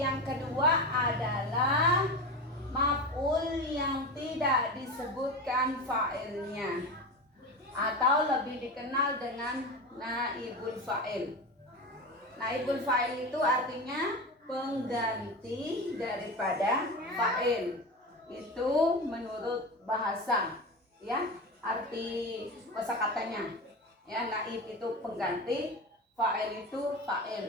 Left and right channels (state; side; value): normal; both; correlation 0.24